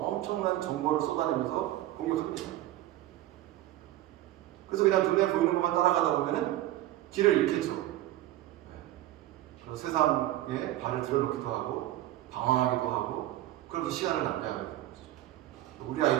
정보를 쏟아내면서 공격합니다. 그래서 그냥 눈에 보이는 것만 따라가다 보면은 길을 잃겠죠. 그래서 세상에 발을 들여놓기도 하고 방황하기도 하고 그러면서 시간을 낭비하게 되는 거죠. 우리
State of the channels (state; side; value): quieter; left; 14.8 dB